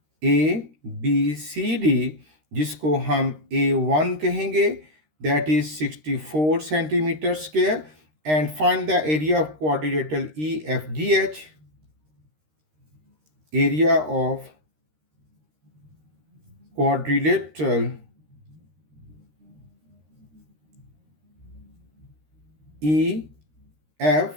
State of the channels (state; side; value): late; left; 13 ms